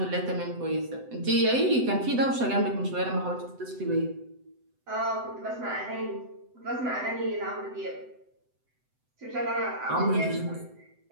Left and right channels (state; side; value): late; left; 7.9 ms